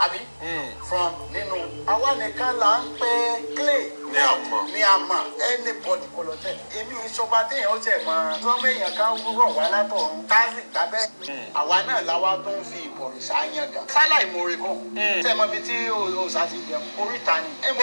Àbí? From nínú àwa nìkan là ń pè clay. Ní àmà anybody kò lọ tẹ̀. Èmi ìṣọba téèyàn ó tẹ̀ mọ́. Tọ́mọ èèyàn kan rọ̀ wá látọ̀run. Káàsì gbábẹ́. Àwa náà làwa tó ń fi ìbọ̀rìṣà yan gan. Sáláì mòrè kan. Tẹ́ mọ ibi tí òòṣà ti jẹun. Oríta ni.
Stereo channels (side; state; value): both; inverted; correlation -1.00